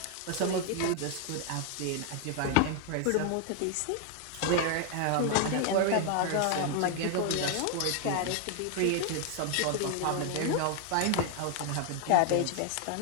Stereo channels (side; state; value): both; different; correlation 0.00